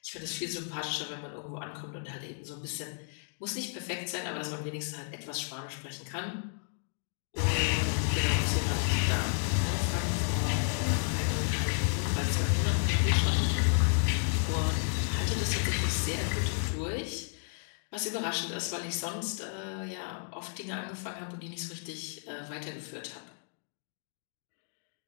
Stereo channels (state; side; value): silent; right; digital silence